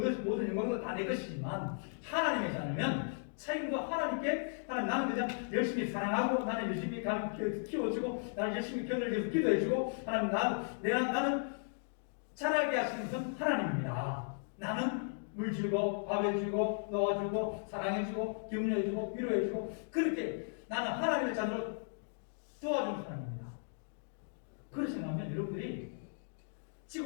모든 영광도 다 내 것이지만, 하나님의 자녀면 책임도 하나님께, 나는 그냥 열심히 사랑하고, 나는 열심히 키워주고, 나는 열심히 견뎌주고 기도해주고, 나는 자라게 하시는 것은 하나님입니다. 나는 물 주고 밥 해주고 놓아주고 사랑해주고 격려해주고 위로해주고, 그렇게 나는 하나님의 자녀로 도와주는 사람입니다. 그렇게 생각하면 여러분들이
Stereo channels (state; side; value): silent; right; digital silence